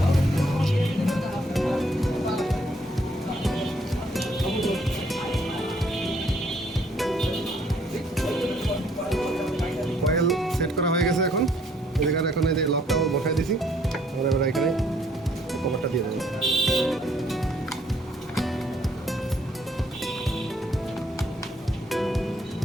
এখন এই যে লকটাও বসাই দিছি, আমরা এবার এখানে কভারটা দিয়ে দেবো।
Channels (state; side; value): normal; both; correlation 0.65